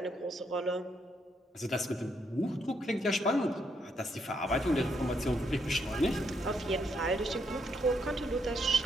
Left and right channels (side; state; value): both; normal; correlation 0.76